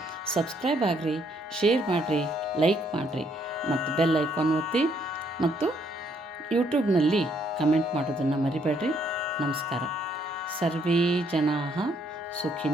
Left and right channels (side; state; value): both; normal; correlation 0.69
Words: ಸಬ್ಸ್ಕ್ರೈಬ್ ಆಗಿರಿ, ಶೇರ್ ಮಾಡಿರಿ, ಲೈಕ್ ಮಾಡಿರಿ ಮತ್ತು ಬೆಲ್ ಐಕಾನ್ ಒತ್ತಿ ಮತ್ತು ಯೂಟ್ಯೂಬ್ನಲ್ಲಿ ಕಮೆಂಟ್ ಮಾಡೋದನ್ನು ಮರಿಬೇಡ್ರಿ. ನಮಸ್ಕಾರ. ಸರ್ವೇ ಜನಾಃ